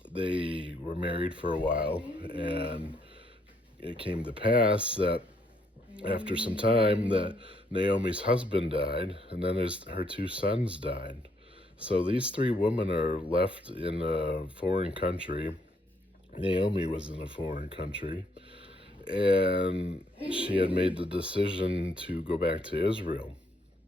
they were married for a while, and it came to pass that after some time that Naomi's husband died, and then her two sons died. So these three women are left in a foreign country. Naomi was in a foreign country, and she had made the decision to go back to Israel.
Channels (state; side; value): normal; both; correlation 0.71